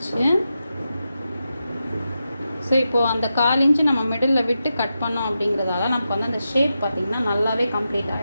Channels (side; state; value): both; inverted; correlation -0.89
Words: ஸோ இப்போது அந்த 1/4 இன்ச்சு நம்ம மிடில் விட்டு கட் பண்ணோம் அப்படிங்கிறதால நமக்கு வந்து அந்த ஷேப் பார்த்திங்கன்னா நல்லாவே கம்ப்ளீட்